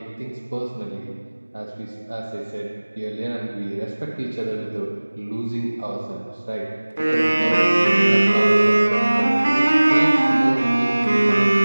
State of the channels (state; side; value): inverted; both; correlation -1.00